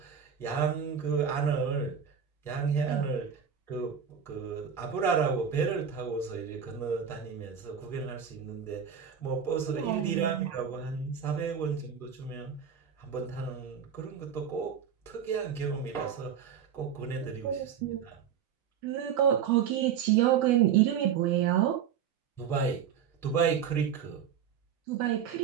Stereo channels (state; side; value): quieter; left; 7.8 dB